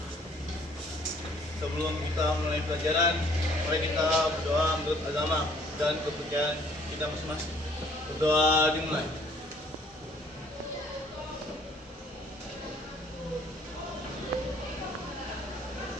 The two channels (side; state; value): both; normal; correlation 0.59